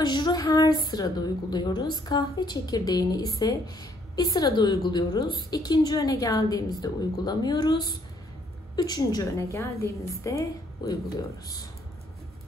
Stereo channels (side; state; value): both; normal; correlation 0.66